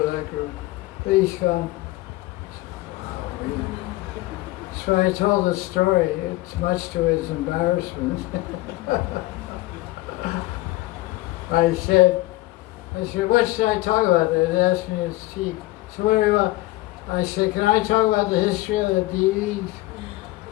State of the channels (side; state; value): right; quieter; 18.7 dB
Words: that group. Please come. Wow, really? So I told the story. It's much to his embarrassment. I said, what should I talk about? They asked me to speak. So what do you want? I said, can I talk about the history of the deities?